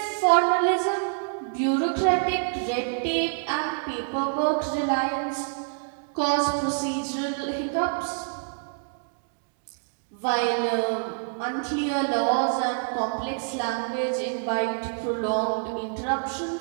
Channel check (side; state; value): left; silent; digital silence